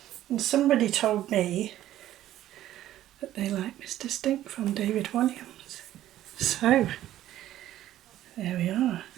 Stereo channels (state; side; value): quieter; left; 13.2 dB